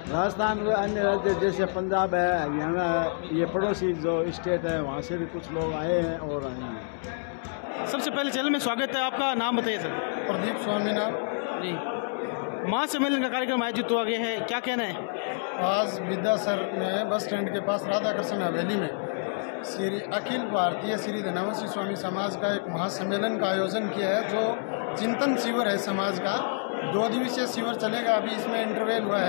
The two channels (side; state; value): right; silent; digital silence